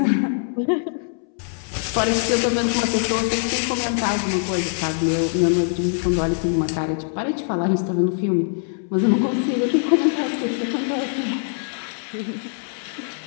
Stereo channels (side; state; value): right; silent; 64 dB below the other